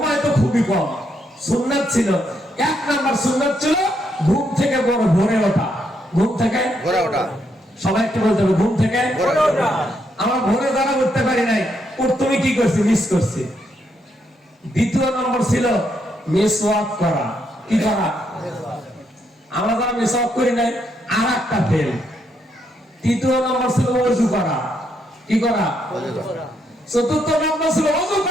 তো খুবই কম। সুন্নাত ছিল, 1 নাম্বার সুন্নাত ছিল ঘুম থেকে বড় ভোরে ওঠা। ঘুম থেকে ভোরে ওঠা। সবাই একটু বলতে হবে, ঘুম থেকে ভোরে ওঠা। আমরা ভোরে যারা উঠতে পারি নাই, তুমি কি করছি? মিস করছি। 2 নম্বর ছিল মিসওয়াক করা। কি করা? আমরা যারা মিসওয়াক করি নাই, আর একটা ফেল। 3 নম্বর ছিল ওযু করা। কি করা? ওযু করা। 4 নম্বর ছিল ওযু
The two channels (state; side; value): normal; both; correlation 0.77